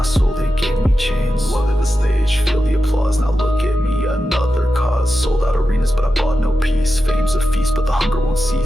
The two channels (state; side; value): normal; both; correlation 0.91